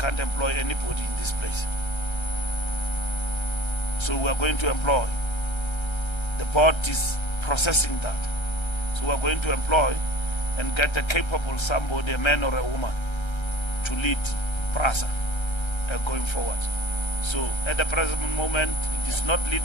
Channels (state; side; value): late; right; 1.3 ms